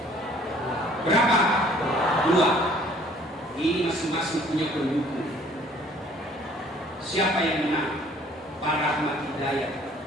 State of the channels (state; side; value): normal; both; correlation 0.56